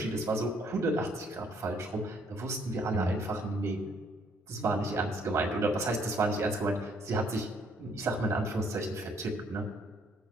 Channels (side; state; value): both; normal; correlation 0.66